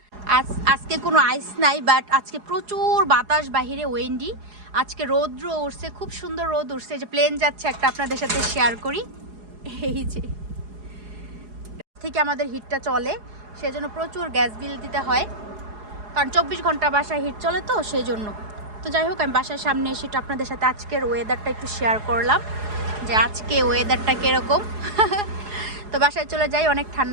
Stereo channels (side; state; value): left; late; 4.8 ms